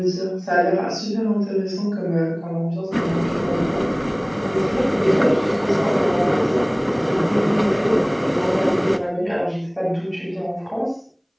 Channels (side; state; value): both; identical; correlation 1.00